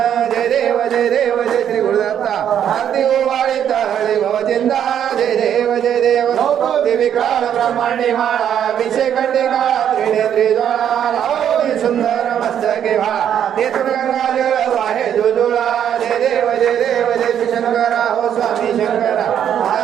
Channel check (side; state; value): left; quieter; 9.4 dB